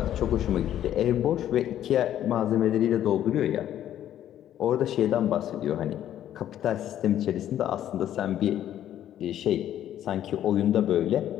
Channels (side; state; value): right; quieter; 11.4 dB